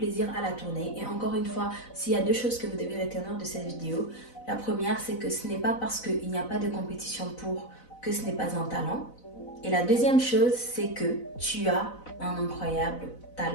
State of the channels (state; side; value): late; right; 4.0 ms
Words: à la tourner et encore une fois, s'il y a deux choses que vous devez retenir de cette vidéo, la première c'est que ce n'est pas parce qu'il n'y a pas de compétition pour que ce n'est pas un talent. Et la deuxième chose c'est que tu as un incroyable